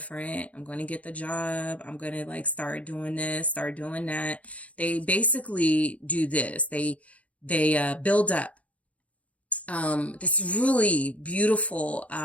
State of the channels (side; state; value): right; late; 0.066 ms